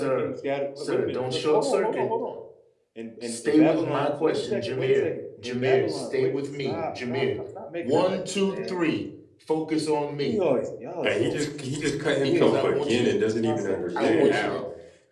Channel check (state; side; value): identical; both; correlation 1.00